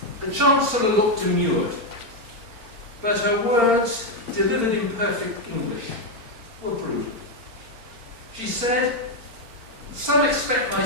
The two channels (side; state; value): left; late; 4.4 ms